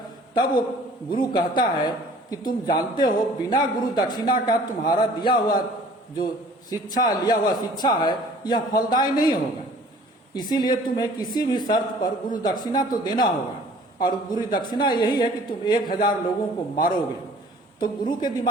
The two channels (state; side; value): normal; both; correlation 0.51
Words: तब वो गुरु कहता है कि तुम जानते हो बिना गुरु दक्षिणा का तुम्हारा दिया हुआ जो शिक्षा, लिया हुआ शिक्षा है, यह फलदायी नहीं होगा। इसीलिए तुम्हें किसी भी शर्त पर गुरु दक्षिणा तो देना होगा, और गुरु दक्षिणा यही है कि तुम 1000 लोगों को मारोगे। तो गुरु के